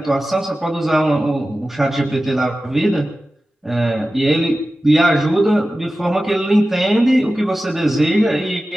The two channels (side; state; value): both; normal; correlation 0.94